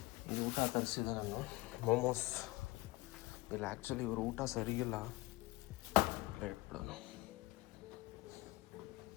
ಈ ಊಟ ತರಿಸಿದೆ ನಾನು, ಮೋಮೋಸ್. ಇಲ್ಲ ಆ್ಯಕ್ಚುಲಿ ಇವರು ಊಟ ಸರಿಗಿಲ್ಲ, ಇಟ್ಬಿಡೋಣ.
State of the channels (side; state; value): right; quieter; 21.1 dB